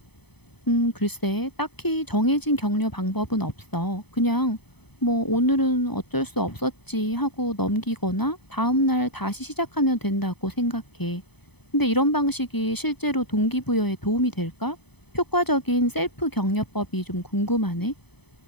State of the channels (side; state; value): right; late; 0.98 ms